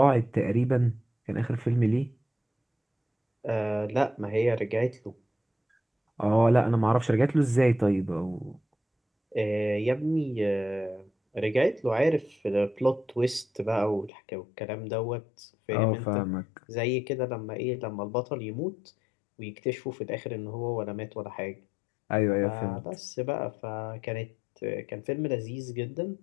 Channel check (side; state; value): right; drops out; at 14.1 s